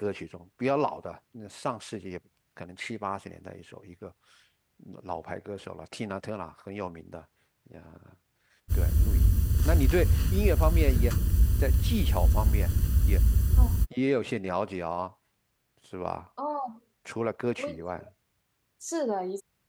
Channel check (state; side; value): identical; both; correlation 1.00